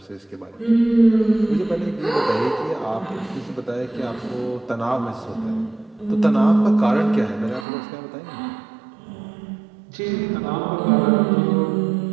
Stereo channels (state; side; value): drops out; left; at 7.7 s